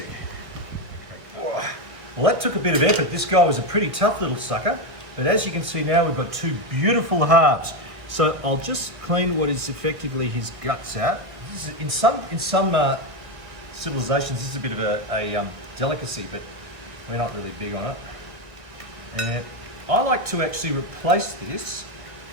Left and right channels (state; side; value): late; left; 1.6 ms